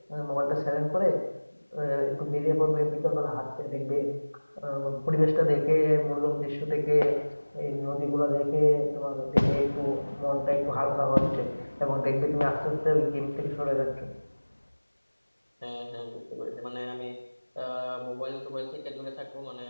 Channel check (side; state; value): both; inverted; correlation -1.00